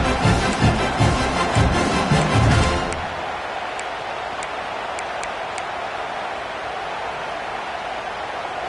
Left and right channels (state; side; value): identical; both; correlation 1.00